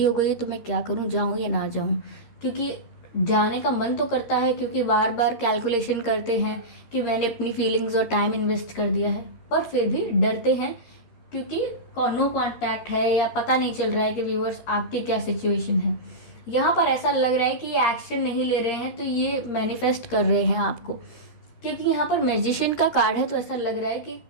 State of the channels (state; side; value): late; right; 13 ms